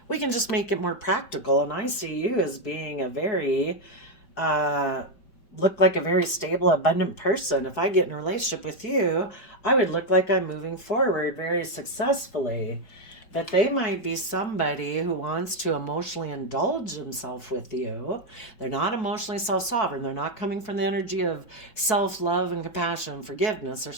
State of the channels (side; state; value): right; late; 4.6 ms